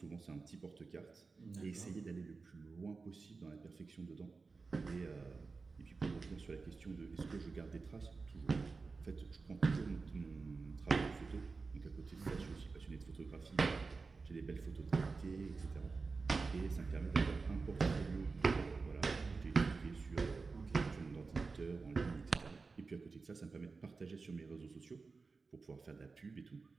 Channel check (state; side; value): quieter; left; 4.3 dB